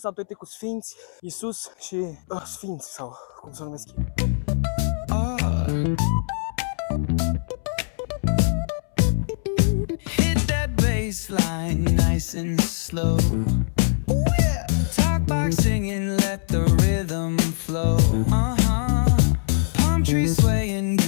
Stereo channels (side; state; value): right; silent; 64 dB below the other